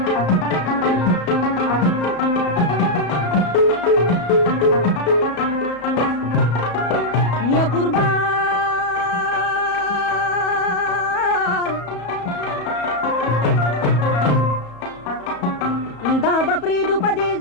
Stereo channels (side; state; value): right; late; 34 ms